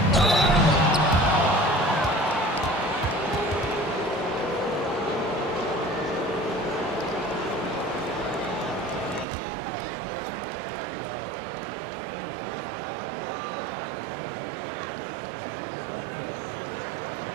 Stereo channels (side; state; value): left; drops out; at 9.2 s